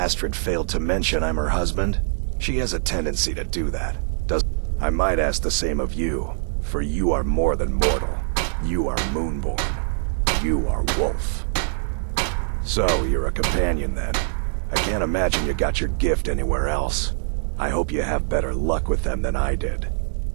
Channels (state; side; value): silent; left; digital silence